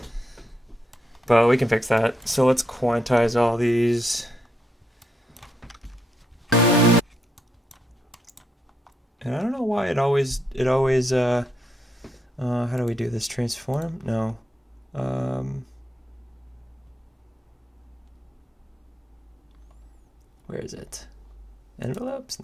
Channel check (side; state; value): both; normal; correlation 0.80